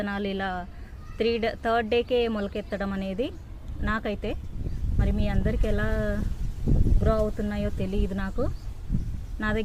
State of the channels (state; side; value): identical; both; correlation 1.00